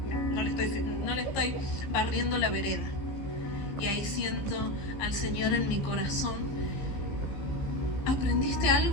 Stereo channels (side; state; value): right; late; 15 ms